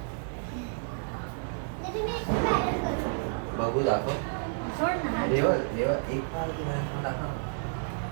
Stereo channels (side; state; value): left; silent; digital silence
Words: बघू दाखव. देवा देवा एक पाय तुला दाखव.